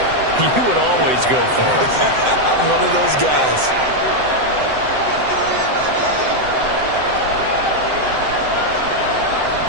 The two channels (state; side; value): late; left; 7.8 ms